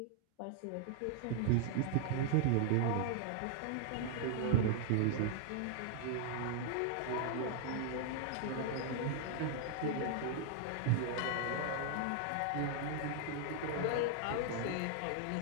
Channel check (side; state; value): both; different; correlation 0.00